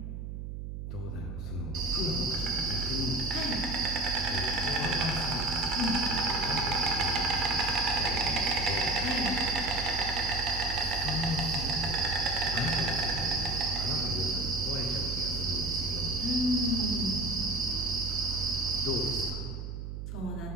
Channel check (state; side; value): noise; right; hum, 7 dB below the sound